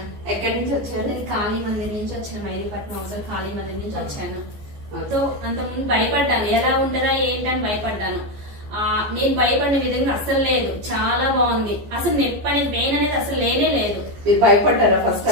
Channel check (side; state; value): left; late; 14 ms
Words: ఎక్కడి నుంచి వచ్చారు? నేను కాళీ మందిర్ నుంచి వచ్చాను, మైదీపట్నం అవసరం కాళీ మందిర్ నుంచి వచ్చాను. సో అంతకుముందు భయపడ్డాను, ఎలా ఉంటుందా ఏంటని భయపడ్డాను. నేను భయపడిన విధంగా అసలు లేదు, చాలా బాగుంది. అసలు నొప్పి అనేది పెయిన్ అనేది అసలు లేనే లేదు. భయపడ్డారా? ఫస్ట్